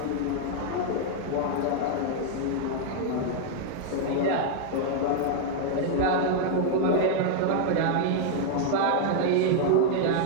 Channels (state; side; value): different; both; correlation 0.00